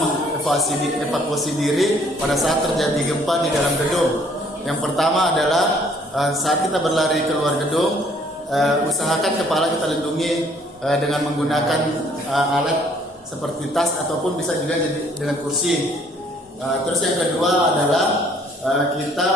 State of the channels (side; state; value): both; normal; correlation 0.61